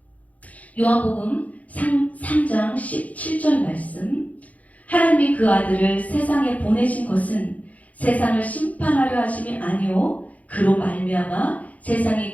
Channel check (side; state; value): right; late; 0.072 ms